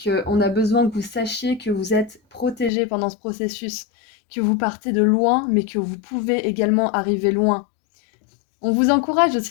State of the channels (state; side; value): drops out; right; at 2.7 s